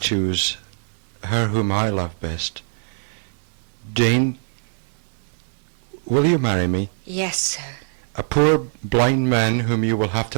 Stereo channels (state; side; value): silent; left; digital silence